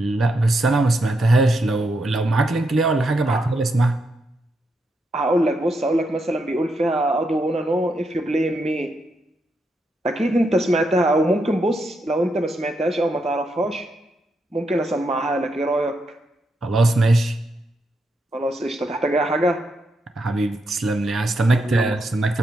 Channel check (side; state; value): both; normal; correlation 0.81